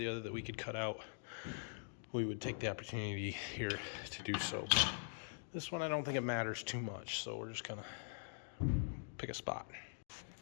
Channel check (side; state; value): right; silent; digital silence